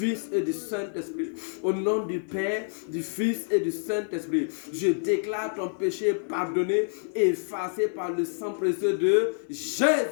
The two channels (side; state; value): right; silent; digital silence